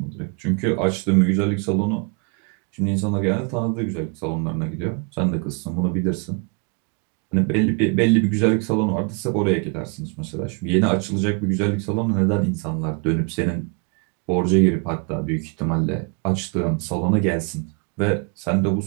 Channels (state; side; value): quieter; left; 34.3 dB